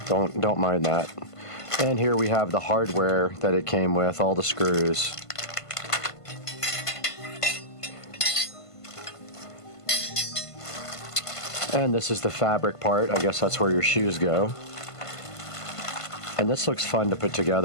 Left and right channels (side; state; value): right; late; 1.5 ms